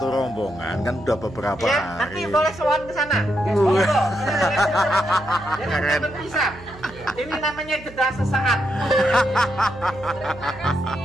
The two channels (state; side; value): noise; right; hum, 19 dB below the sound